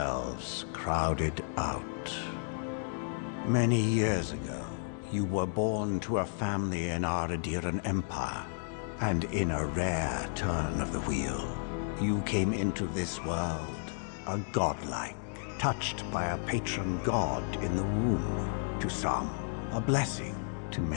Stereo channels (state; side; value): silent; right; digital silence